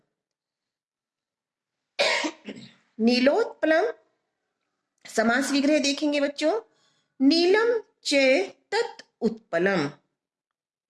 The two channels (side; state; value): both; identical; correlation 1.00